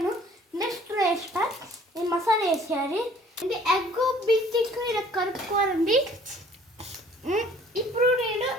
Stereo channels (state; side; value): normal; both; correlation 0.55